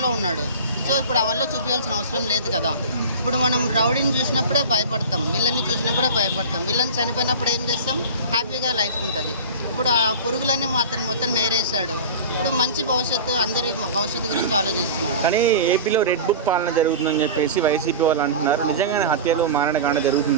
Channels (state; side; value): inverted; both; correlation -0.32